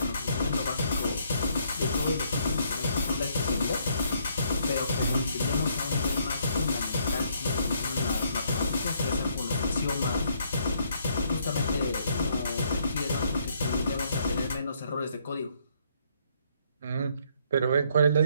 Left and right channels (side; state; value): both; inverted; correlation -0.69